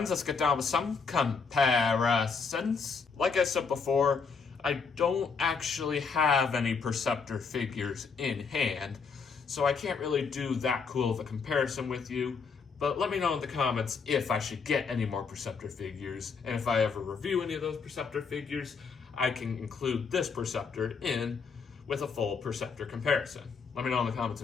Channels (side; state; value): right; quieter; 5.3 dB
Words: let's get down with some comparisons. Like I said before, I don't actually have any Preceptor figures in hand, so I can't really do that cool of a comparison with you. But let me know in the comments if I should get any more Preceptor figures, and if I ever review any of those Preceptor figures, I can include this Preceptor in with a full Preceptor comparison. Let me know in the comments